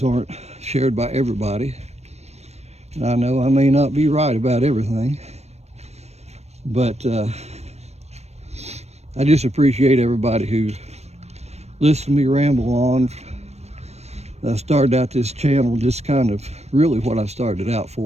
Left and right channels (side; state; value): left; late; 0.31 ms